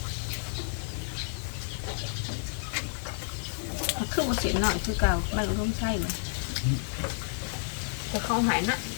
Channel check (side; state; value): right; silent; 58 dB below the other